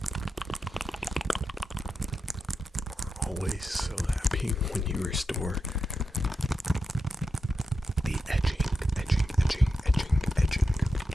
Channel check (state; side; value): normal; both; correlation 0.88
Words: are always so happy when you restore the edging.